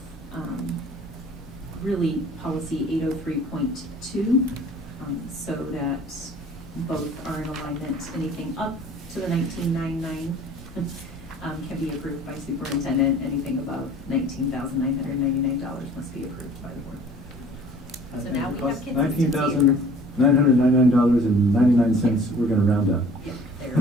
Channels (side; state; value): both; normal; correlation 0.49